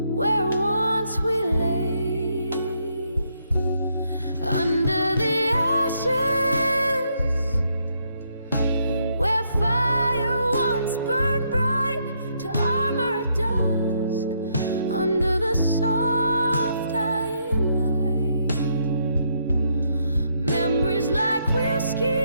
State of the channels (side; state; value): both; inverted; correlation -0.75